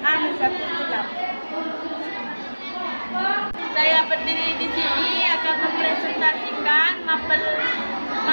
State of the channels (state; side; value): inverted; both; correlation -1.00